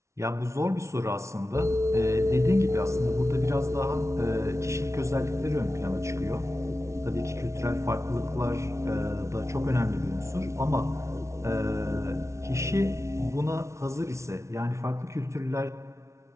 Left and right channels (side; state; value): left; late; 0.14 ms